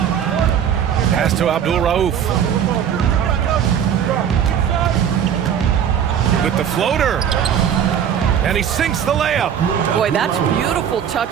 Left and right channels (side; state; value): left; quieter; 8.8 dB